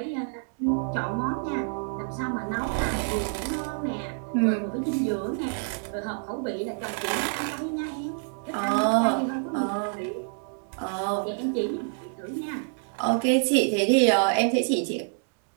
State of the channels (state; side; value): silent; left; 60 dB below the other